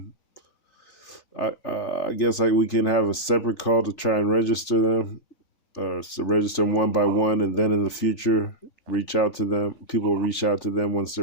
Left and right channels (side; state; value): right; late; 3.4 ms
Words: I guess like we can have a separate call to try and register them, so register them one by one, and then in the future reach out to them. People will reach out to them once